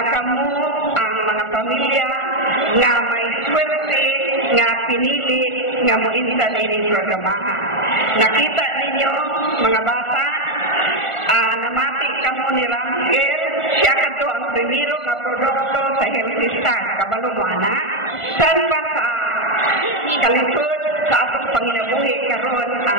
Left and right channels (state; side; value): late; right; 1.4 ms